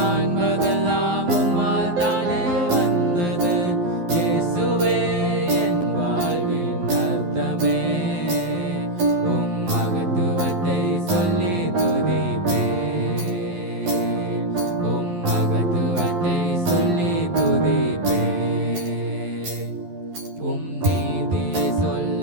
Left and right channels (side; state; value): left; late; 11 ms